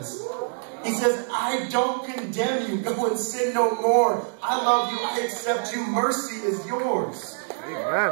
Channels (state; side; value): silent; left; digital silence